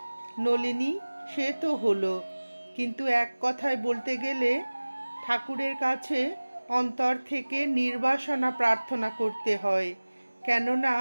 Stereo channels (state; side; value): inverted; both; correlation -1.00